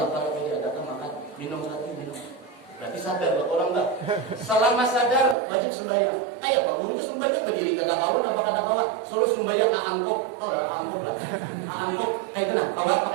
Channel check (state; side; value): drops out; left; at 5.4 s